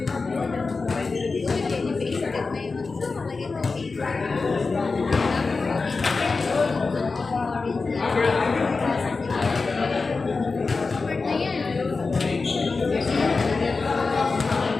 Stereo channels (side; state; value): right; quieter; 4.2 dB